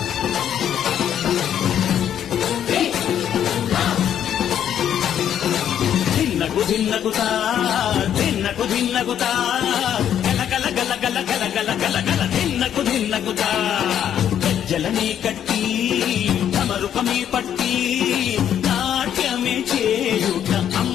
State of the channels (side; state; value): right; quieter; 9.8 dB